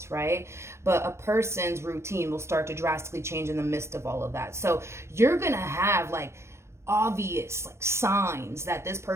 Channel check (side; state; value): left; late; 0.13 ms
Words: right? But a person's routine will start to drastically change in the midst of all of that. So you're gonna have like obvious like signs that this